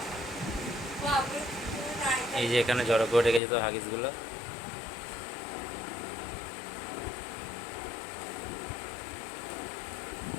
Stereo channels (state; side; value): drops out; right; at 3.4 s